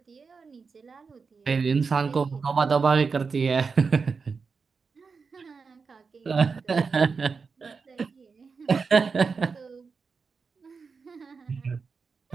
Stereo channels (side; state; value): left; quieter; 5.0 dB